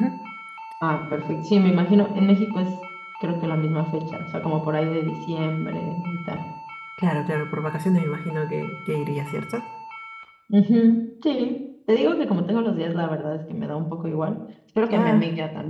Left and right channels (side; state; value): both; identical; correlation 1.00